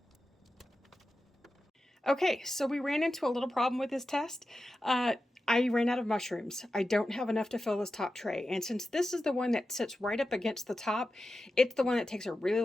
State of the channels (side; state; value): both; normal; correlation 0.92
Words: Okay, so we ran into a little problem with this test. I ran out of mushrooms. I don't have enough to fill this top tray. And since this is the one that sits right up against the top, it's the one that takes a really